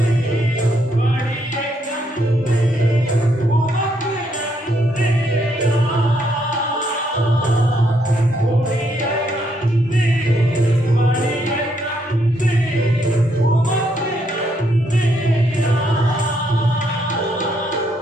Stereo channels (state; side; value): normal; both; correlation 0.74